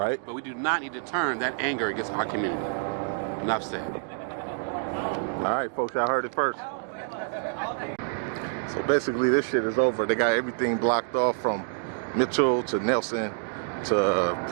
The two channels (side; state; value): left; silent; digital silence